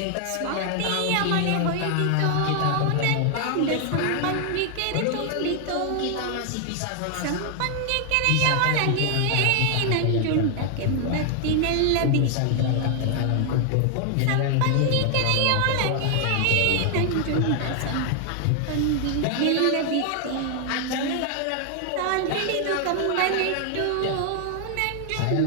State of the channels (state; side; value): different; both; correlation 0.00